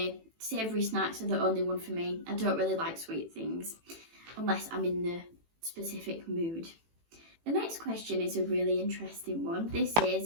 Savoury snacks are the only one for me. I don't really like sweet things unless I'm in the specific mood. The next question is a really interesting one. This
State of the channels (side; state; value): left; late; 18 ms